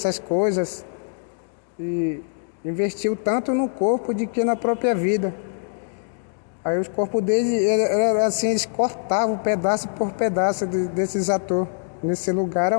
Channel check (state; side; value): silent; right; digital silence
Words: coisas, e investiu tanto no corpo de que na própria vida. Aí os corpos deles, era assim, eles cortavam pedaço por pedaço desses atores. Nesse lugar era